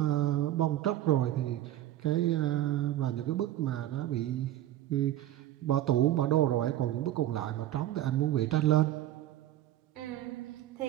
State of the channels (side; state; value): left; quieter; 13.4 dB